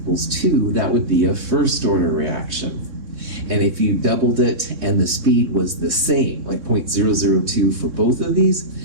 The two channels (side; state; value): left; late; 3.6 ms